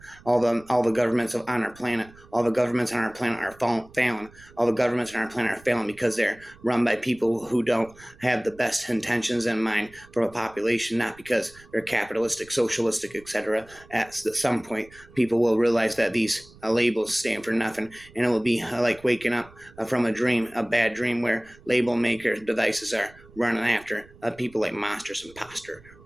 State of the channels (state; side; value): noise; right; rumble, 24 dB below the sound